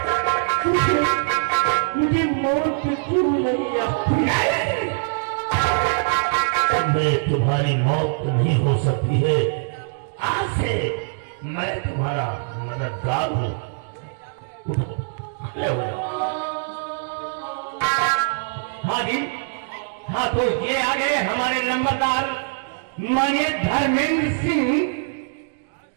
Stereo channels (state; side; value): silent; left; digital silence